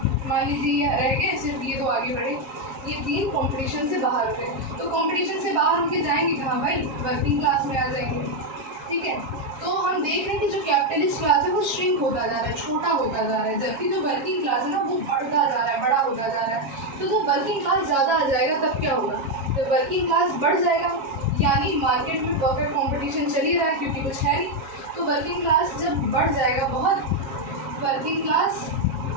मान लीजिए ये रह गए, सिर्फ ये तो आगे बढ़े, ये 3 कॉम्पिटिशन से बाहर हो गए। तो कॉम्पिटिशन से बाहर होकर जाएंगे कहाँ भाई? वर्किंग क्लास में आ जाएंगे, ठीक है। तो हम देख रहे हैं कि जो कैपिटलिस्ट क्लास है वो श्रिंक होता जा रहा है, छोटा होता जा रहा है, जबकि जो वर्किंग क्लास है ना वो बढ़ता जा रहा है, बड़ा होता जा रहा है। तो जब वर्किंग क्लास ज़्यादा आ जाएगा तब क्या होगा? जब वर्किंग क्लास बढ़ जाएगा, यानी मार्केट में परफेक्ट कॉम्पिटिशन चल ही रहा है क्योंकि कुछ है नहीं, तो वर्किंग क्लास जब बढ़ जाएगा बहुत, वर्किंग क्लास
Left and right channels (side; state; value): left; late; 7.3 ms